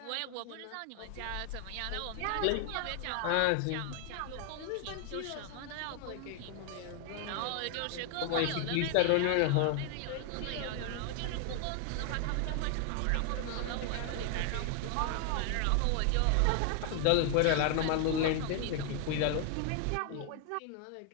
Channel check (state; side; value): different; both; correlation 0.00